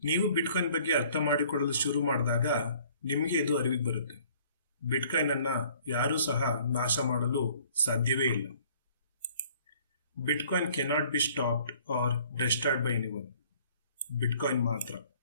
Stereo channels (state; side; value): inverted; both; correlation -0.57